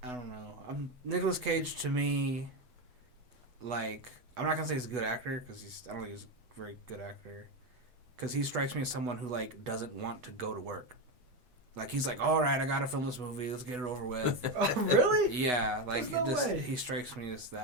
I don't know. Nicolas Cage to me, like, I'm not gonna say he's a good actor because I don't think he's a very good actor. Because he strikes me as someone who like doesn't want to go to work. Like he's like, all right, I gotta film this movie. Let's get it over with. Oh, really? Yeah, like There's no way. he strikes me as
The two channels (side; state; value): left; late; 8.0 ms